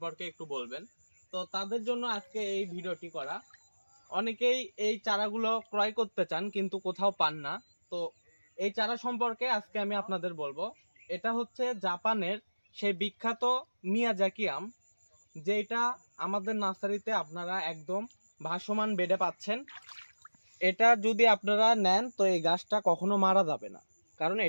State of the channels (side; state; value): both; inverted; correlation -1.00